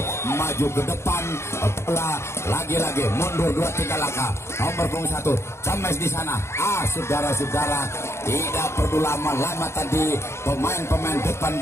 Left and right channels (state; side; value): late; right; 0.13 ms